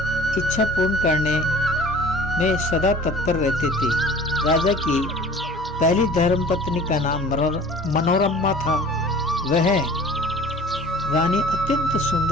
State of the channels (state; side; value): normal; both; correlation 0.45